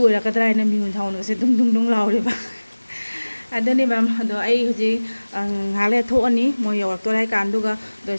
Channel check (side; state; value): both; inverted; correlation -1.00